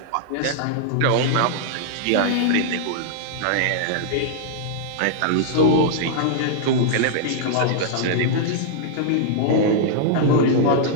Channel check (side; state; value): both; different; correlation -0.01